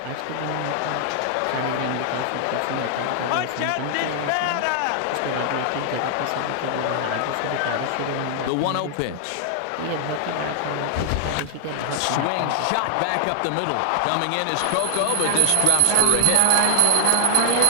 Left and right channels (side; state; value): both; different; correlation 0.00